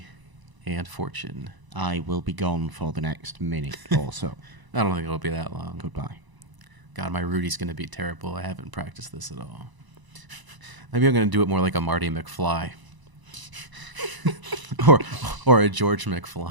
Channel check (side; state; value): left; late; 1.0 ms